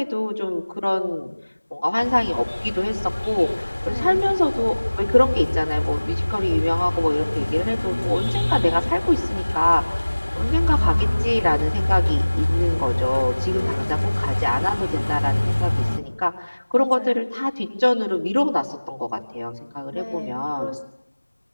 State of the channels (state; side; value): inverted; both; correlation -1.00